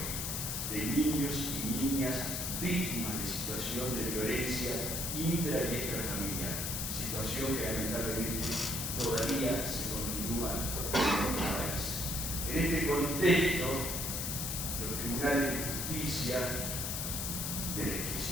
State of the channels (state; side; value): noise; left; hiss, 2 dB below the sound